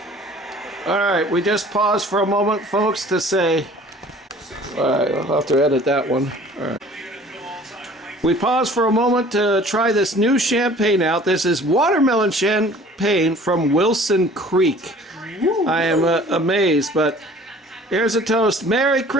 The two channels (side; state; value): both; normal; correlation 0.49